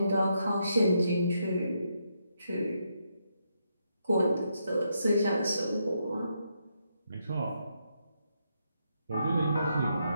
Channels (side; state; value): both; inverted; correlation -0.79